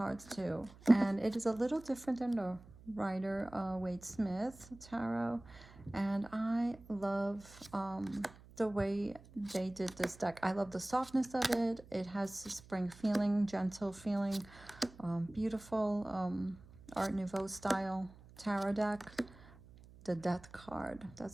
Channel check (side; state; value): right; noise; hum, 21 dB below the sound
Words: too. And it is a little different than the Rider Waite Smith tarot. And I love the way they did this deck. I love the softness of it. It has a spring feeling, gentle feeling, beautiful Art Nouveau style tarot deck. The Death card,